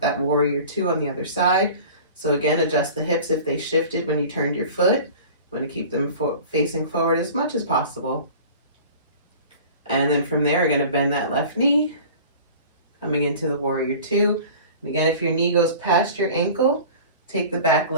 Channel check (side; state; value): both; inverted; correlation -0.41